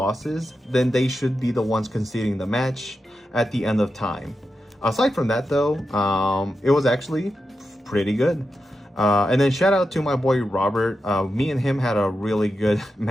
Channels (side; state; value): both; normal; correlation 0.89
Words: then they should be the ones conceding the match at the end of time. Aside from that though, it was actually pretty good. And then shout out to my boy Robert. Me and him had a really good